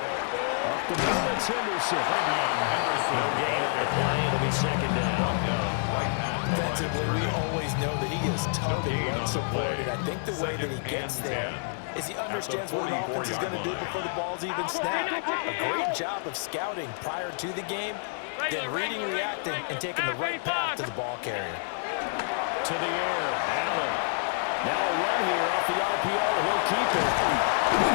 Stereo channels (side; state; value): right; silent; 59 dB below the other